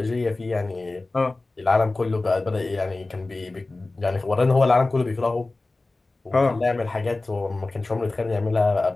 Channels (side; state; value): right; quieter; 3.2 dB